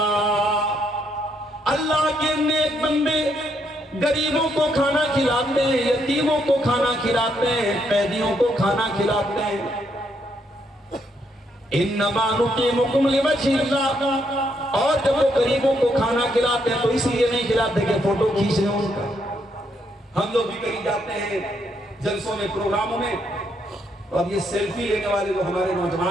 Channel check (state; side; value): normal; both; correlation 0.75